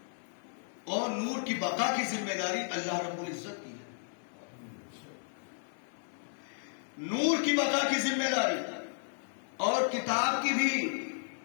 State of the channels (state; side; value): silent; right; 55 dB below the other